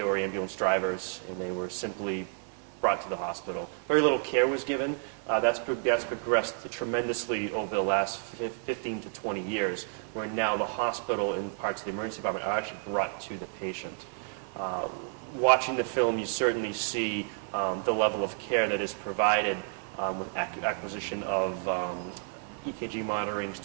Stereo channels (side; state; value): left; silent; 57 dB below the other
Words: were ambulance drivers, and they were simply brought to the hospital. Very little care was given. That's progressed tremendously over the last 15 to 20 years, where now the hospital and parts of the emergency department are actually brought to the patient. Watching the film, you certainly see the level of care that is provided with acquisition of EKG monitoring,